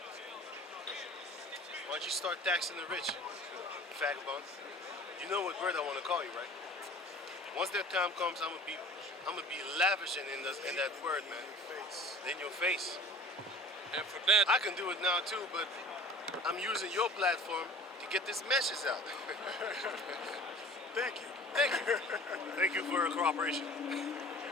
Why don't you start taxing the rich, vagabond? You know what word I want to call you, right? Once that time comes, I'm gonna be lavishing in that word, man. In your face. And for that, I can do it now too, but I'm using your platform to get this message out. Thank you. Thank you. Thank you for your cooperation. On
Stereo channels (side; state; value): both; normal; correlation 0.45